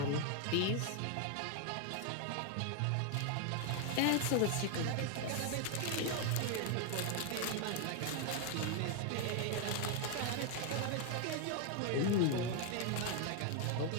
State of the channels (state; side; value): different; both; correlation 0.00